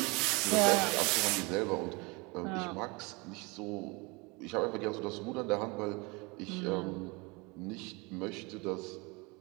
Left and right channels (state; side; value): quieter; left; 27.0 dB